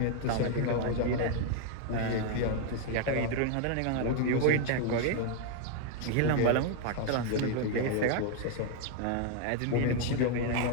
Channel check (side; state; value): both; different; correlation 0.00